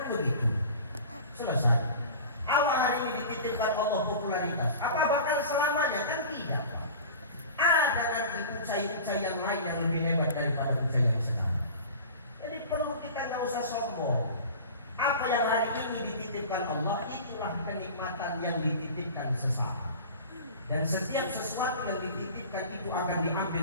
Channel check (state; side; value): inverted; both; correlation -0.38